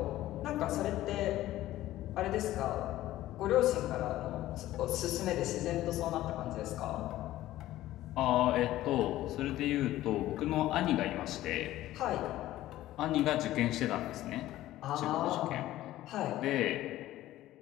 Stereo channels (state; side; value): quieter; right; 15.0 dB